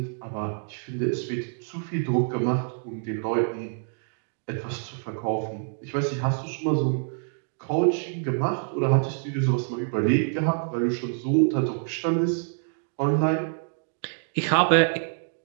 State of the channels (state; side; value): silent; left; digital silence